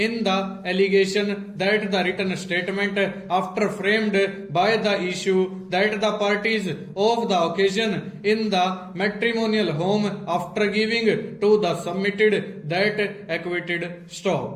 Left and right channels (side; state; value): both; identical; correlation 1.00